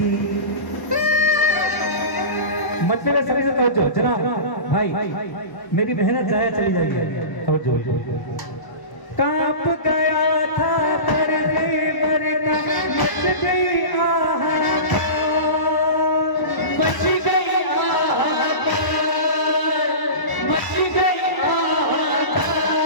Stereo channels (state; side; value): late; right; 1.0 ms